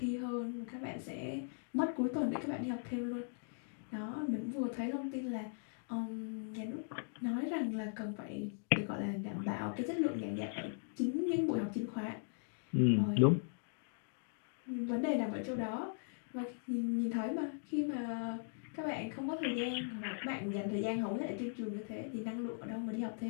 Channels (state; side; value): silent; right; digital silence